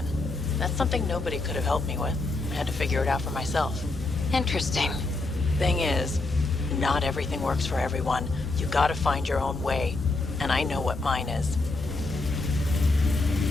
That's something nobody could have helped me with. I had to figure it out for myself. Interesting. Thing is, not everything works for everyone. You gotta find your own way, and I know what mine is.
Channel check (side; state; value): right; quieter; 3.3 dB